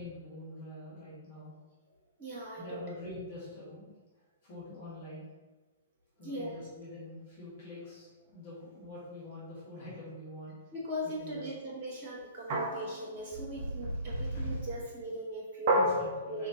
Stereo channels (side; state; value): both; inverted; correlation -0.44